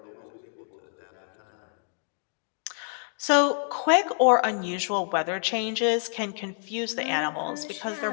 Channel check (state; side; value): silent; right; digital silence